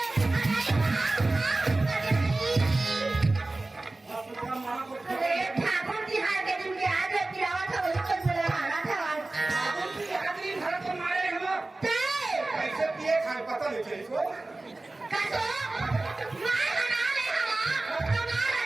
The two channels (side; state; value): left; quieter; 3.0 dB